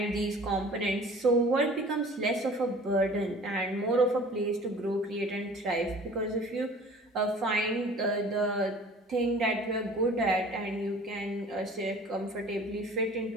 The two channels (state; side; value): normal; both; correlation 0.46